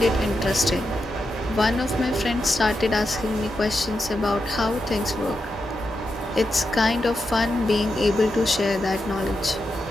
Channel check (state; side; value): normal; both; correlation 0.87